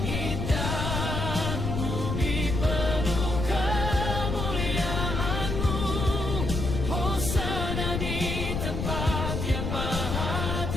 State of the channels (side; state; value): left; noise; rumble, 2 dB below the sound